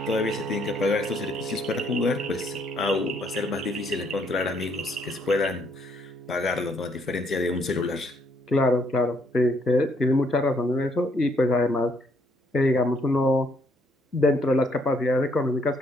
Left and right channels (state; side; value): normal; both; correlation 0.69